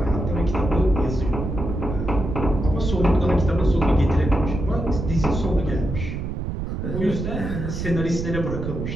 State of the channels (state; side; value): noise; right; rumble, 4 dB below the sound